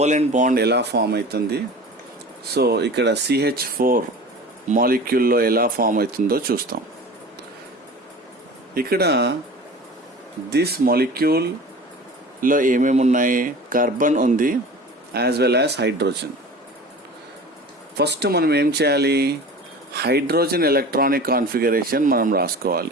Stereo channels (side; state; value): both; normal; correlation 0.38